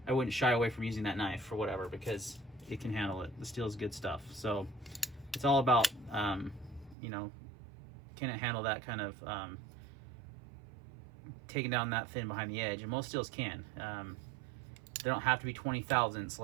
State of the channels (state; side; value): drops out; left; at 7.0 s